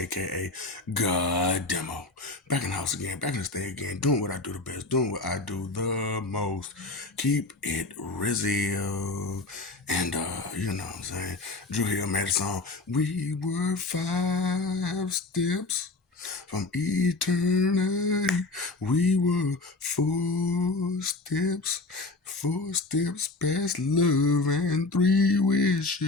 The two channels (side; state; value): right; quieter; 3.3 dB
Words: God Demo. Back in the house again, back in the stay again, doing what I do the best, doing what I do the most. Keep it real. And you know what I'm saying? Drew Hill made a song. We were 5 steps from eternity. We were 4 steps past love and 3